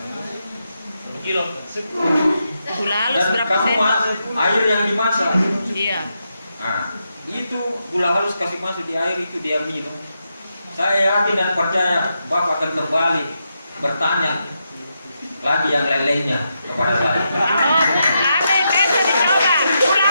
Kilo. Gula halus Dan berapa kamu sen? air yang dimasak. Iya. Nah, itu gula halus kasih masuk di air itu dia minum. Saya yakin dan percaya Bapak akan kembali bertanya lagi yang lain-lainnya kepada saya. Oh, ada yang bisa dicoba. Gula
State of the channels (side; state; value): both; inverted; correlation -0.84